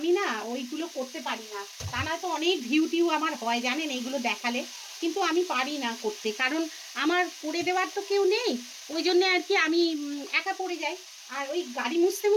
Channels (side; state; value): both; identical; correlation 1.00